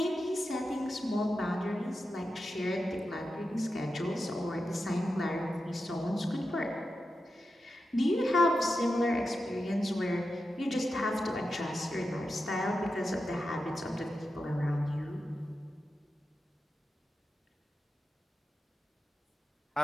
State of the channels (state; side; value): normal; both; correlation 0.90